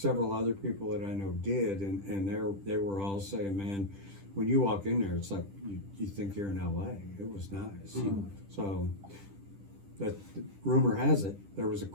other people that I know did, and they were all saying, man, when you walk in there, it's like you think you're in LA. It was nice. Mhm. So that rumor has it there was a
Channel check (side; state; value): left; late; 10 ms